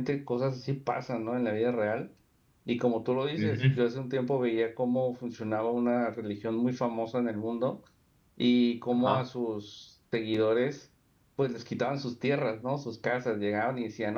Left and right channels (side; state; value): both; identical; correlation 1.00